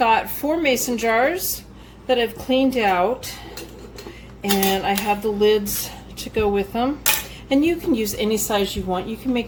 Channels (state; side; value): identical; both; correlation 1.00